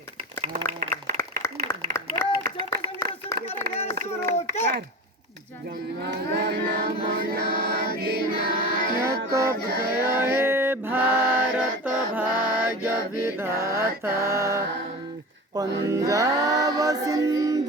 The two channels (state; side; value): normal; both; correlation 0.31